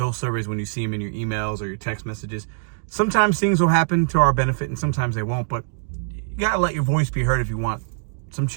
surveys when you see them in your emails or your text messages. Sometimes things will happen to our benefit, and sometimes they won't, but you gotta let your voice be heard if you want some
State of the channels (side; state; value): left; silent; digital silence